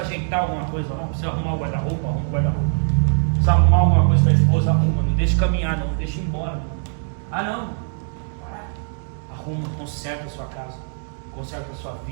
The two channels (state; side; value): silent; left; digital silence